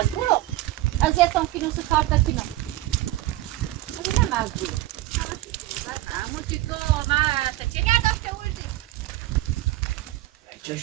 از یتون کنم تو کار تکنم من مجبورم اما چی تو من چه داشته بودی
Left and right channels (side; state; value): left; quieter; 16.7 dB